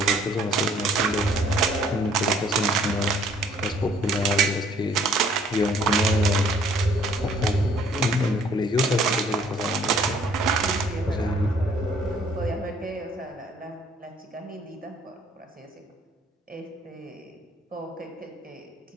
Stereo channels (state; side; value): normal; both; correlation 0.60